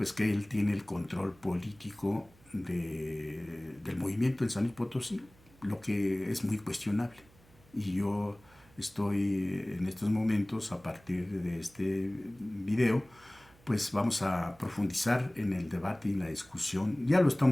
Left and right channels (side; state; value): right; noise; hum, 27 dB below the sound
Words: que él tiene el control político del movimiento en San Luis Potosí, lo que es muy cuestionable. Y yo estoy en estos momentos, a partir de este video, pues vamos a profundizar en el debate y la discusión. Ya lo